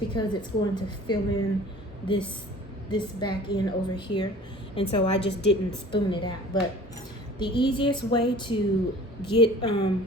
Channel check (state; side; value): normal; both; correlation 0.45